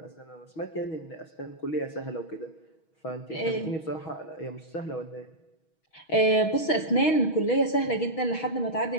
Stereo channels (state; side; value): late; right; 6.2 ms